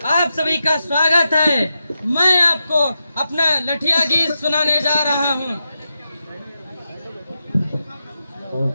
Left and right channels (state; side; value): inverted; both; correlation -0.88